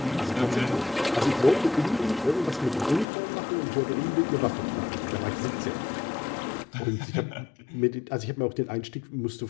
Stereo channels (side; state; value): right; drops out; at 3.1 s